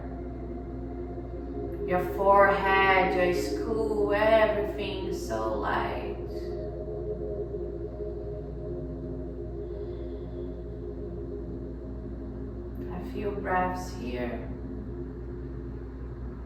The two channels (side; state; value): both; identical; correlation 1.00